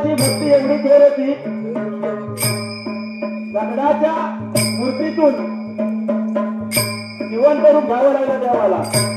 भक्ती एवढी थोर होती. दगडाच्या मूर्तीतून जिवंत रूप घ्यावं लागलं देवाला.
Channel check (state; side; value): identical; both; correlation 1.00